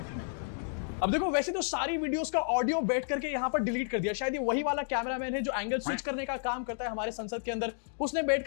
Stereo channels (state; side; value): silent; right; digital silence